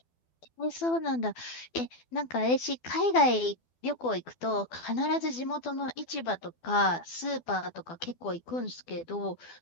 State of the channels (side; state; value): right; late; 12 ms